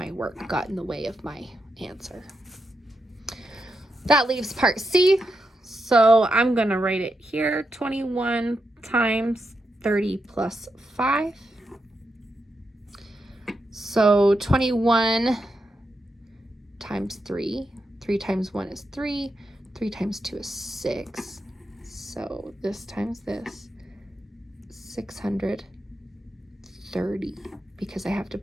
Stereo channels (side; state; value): both; normal; correlation 0.85